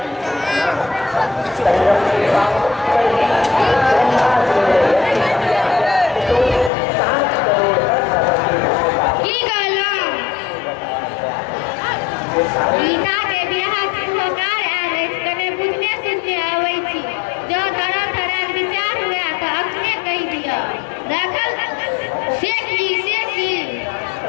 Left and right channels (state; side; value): drops out; right; at 6.7 s